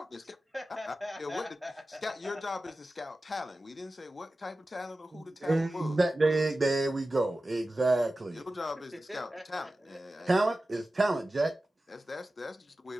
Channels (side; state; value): both; normal; correlation 0.95